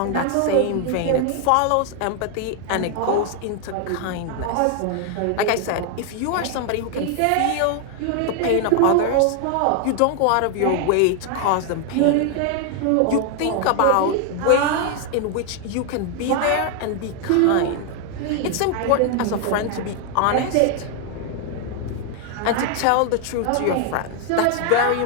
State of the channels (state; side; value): different; both; correlation 0.00